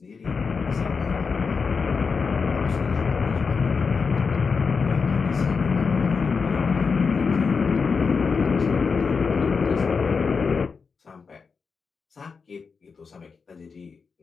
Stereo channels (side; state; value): right; quieter; 5.2 dB